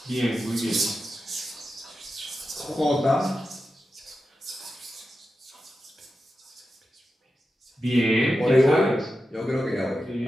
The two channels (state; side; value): normal; both; correlation 0.91